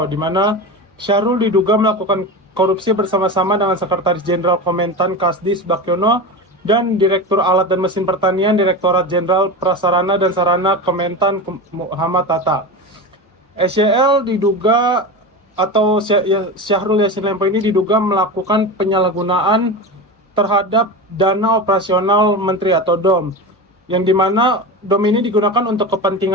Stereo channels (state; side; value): normal; both; correlation 0.24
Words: di mana Syahrul diduga melakukan korupsi bersama-sama dengan Sekretaris Jenderal Kementan Kasdis Bakyono dan Direktur Alat dan Mesin Pertanian Direktorat Jenderal Prasarana dan Sarana Kementan Muhammad Tata. SYL diduga atau Syahrul Yassin Limpo ini diduga melakukan penyalahgunaan terhadap dana operasional Menteri atau DOM, yang dimana DOM ini digunakan untuk